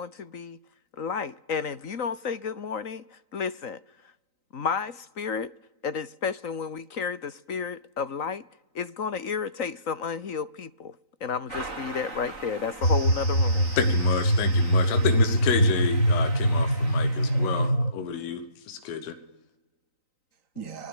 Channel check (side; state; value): right; late; 3.9 ms